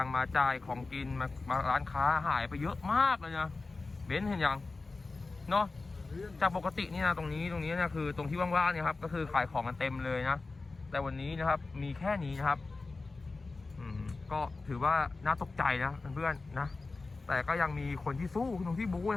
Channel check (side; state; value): right; quieter; 3.7 dB